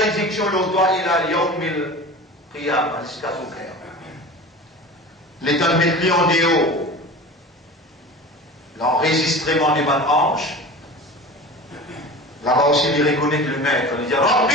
le doigt, il a yawmil qiyam, jusqu'à son cœur. L'État met lui en déo, l'enregistrement des bonnes hanches, là-bas aussi, il reconnaît que le maître, il dit,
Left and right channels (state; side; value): normal; both; correlation 0.35